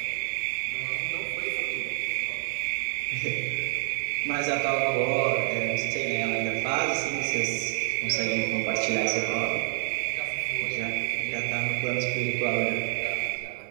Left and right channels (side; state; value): left; silent; 57 dB below the other